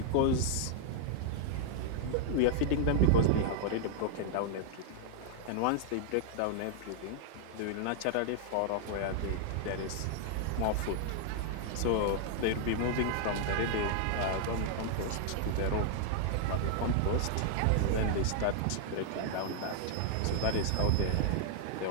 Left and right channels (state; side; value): different; both; correlation 0.00